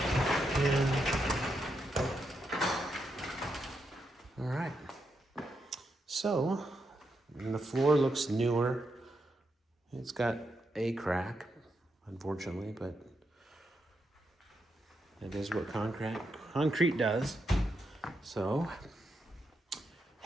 And all right. So the floor looks newer. It's got a crack, unfortunately, but that is what concrete does. So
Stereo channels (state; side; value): normal; both; correlation 0.83